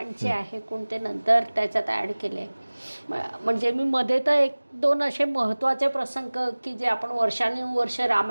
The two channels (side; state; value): both; inverted; correlation -1.00